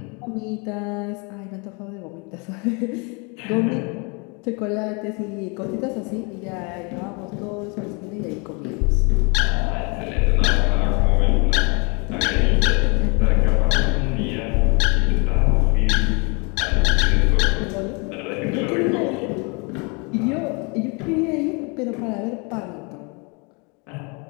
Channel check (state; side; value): quieter; right; 31.9 dB